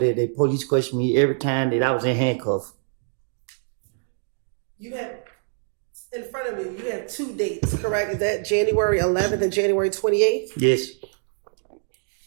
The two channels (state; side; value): silent; left; digital silence